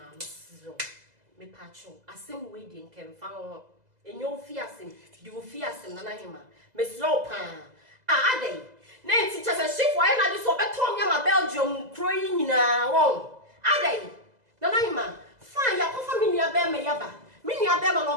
mesro me pacho asem we di nkemfa ho enyo ofi asem di ofi asem na yi ma mesro pa ade na enti che se shift wa na di so beto nya ma Belgium kro yi nyina won ade na yi ma fa ya ko family abe me yaba me ni abe ma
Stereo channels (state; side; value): late; left; 2.0 ms